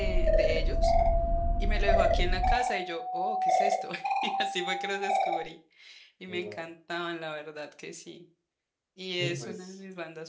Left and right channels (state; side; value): identical; both; correlation 1.00